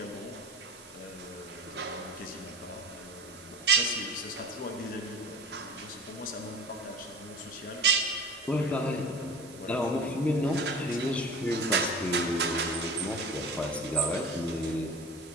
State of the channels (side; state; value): both; normal; correlation 0.38